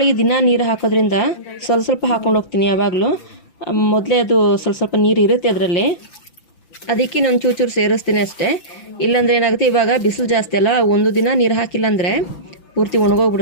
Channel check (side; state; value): right; late; 5.9 ms